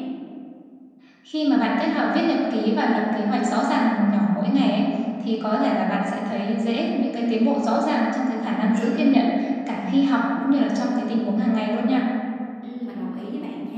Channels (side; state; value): both; identical; correlation 1.00